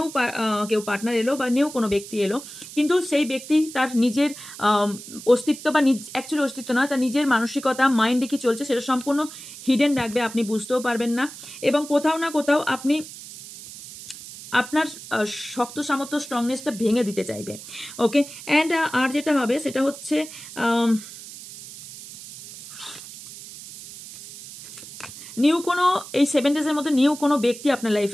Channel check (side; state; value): right; noise; hiss, 14 dB below the sound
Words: কেউ পার্টনার এলো বা নিউ কোনো ব্যক্তি এলো, কিন্তু সেই ব্যক্তি তার নিজের অস্তিত্ব বা অ্যাকচুয়ালি অস্তিত্ব নয়, তার নিজের মানসিকতা, মাইন্ডে কি চলছে সেটা সম্পূর্ণ হিডেন রাখবে, আপনি বুঝতেও পারবেন না এবং কোথাও না কোথাও আপনি আপনার শক্ত সামর্থ্য স্ট্রংনেসটা ভেঙে দিতে চাইবে। ওকে, অ্যান্ড আর যেটা হবে সেটা হচ্ছে নিউ কোনো এই 7 ডেজের মধ্যে নিউ কোনো ব্যক্তি আপনার